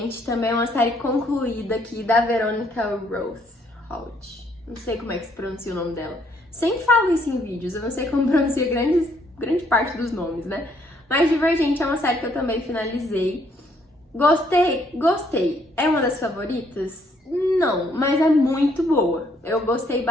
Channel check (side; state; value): both; normal; correlation 0.68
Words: também é uma série concluída aqui da Veronica Roth. Não sei como é que se pronuncia o nome dela. Sempre falo isso em vídeos, eu não sei como pronuncia grande parte dos nomes, né? Mas Divergente é uma série que eu também finalizei. Gostei. É uma das favoritas? Não, mas é muito boa. Eu gostei